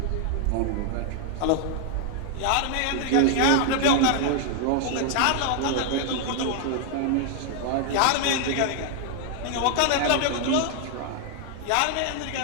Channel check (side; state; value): both; different; correlation 0.00